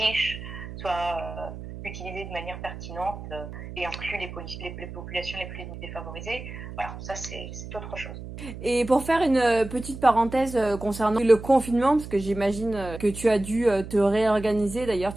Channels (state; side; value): noise; right; hum, 11 dB below the sound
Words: soient utilisées de manière pertinente et incluent les populations les plus défavorisées. Voilà, ça c'est autre chose. Et pour faire une petite parenthèse concernant le confinement, parce que j'imagine que tu as dû te réorganiser, d'ailleurs